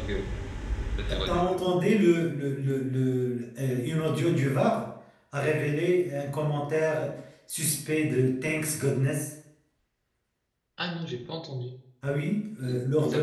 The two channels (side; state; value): both; identical; correlation 1.00